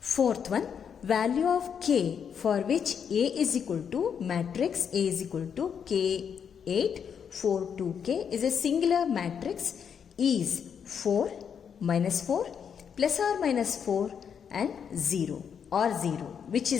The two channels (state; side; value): quieter; right; 7.4 dB